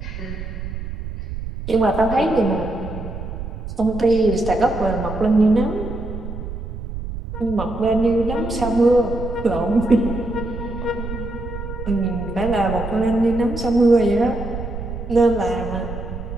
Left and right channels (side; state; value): right; noise; rumble, 8 dB below the sound